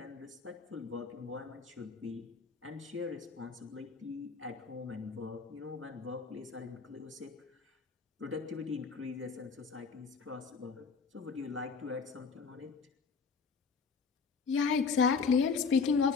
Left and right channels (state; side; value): quieter; right; 5.1 dB